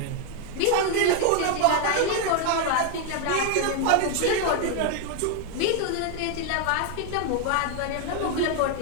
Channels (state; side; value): different; both; correlation 0.00